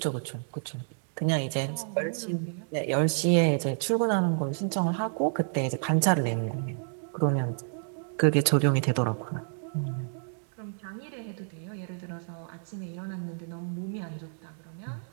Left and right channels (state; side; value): silent; left; digital silence